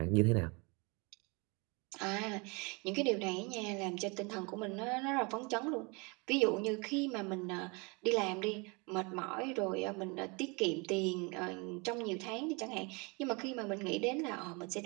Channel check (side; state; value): left; quieter; 29.4 dB